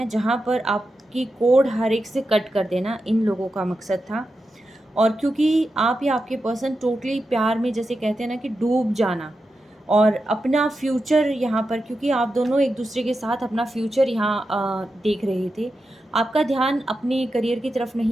जहाँ पर आपकी कोड हर एक से कट कर देना इन लोगों का मकसद था। और क्योंकि आप या आपके पर्सन टोटली प्यार में, जैसे कहते हैं ना कि डूब जाना, और अपना फ्यूचर यहाँ पर, क्योंकि आप दोनों एक दूसरे के साथ अपना फ्यूचर यहाँ देख रहे थे, आपका ध्यान अपने करियर की तरफ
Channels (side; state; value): both; normal; correlation 0.89